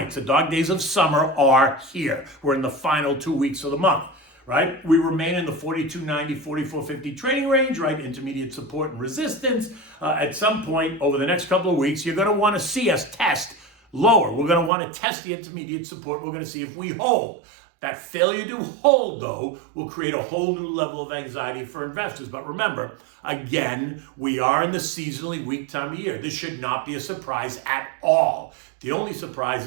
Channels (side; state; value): left; drops out; at 14.7 s